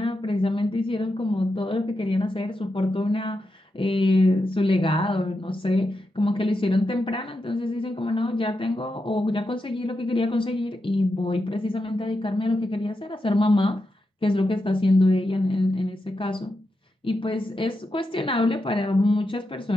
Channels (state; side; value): normal; both; correlation 0.87